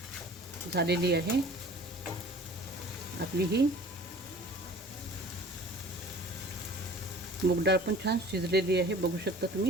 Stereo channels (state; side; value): normal; both; correlation 0.46